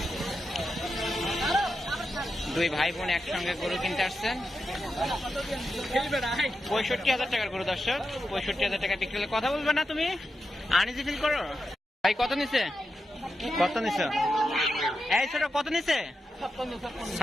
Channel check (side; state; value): both; normal; correlation 0.88